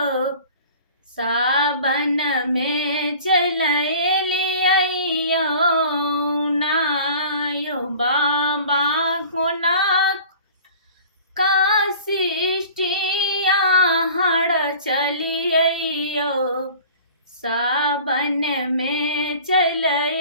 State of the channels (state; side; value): inverted; both; correlation -0.44